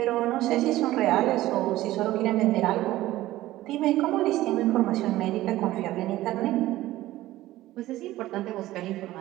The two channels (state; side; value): quieter; left; 15.9 dB